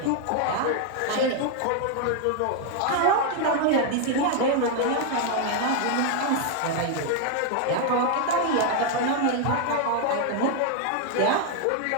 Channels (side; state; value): both; different; correlation 0.00